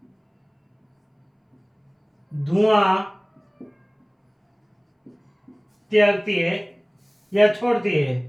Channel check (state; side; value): identical; both; correlation 1.00